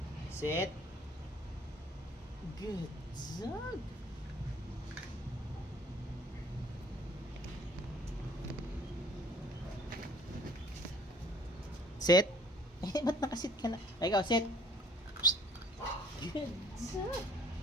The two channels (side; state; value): both; normal; correlation 0.55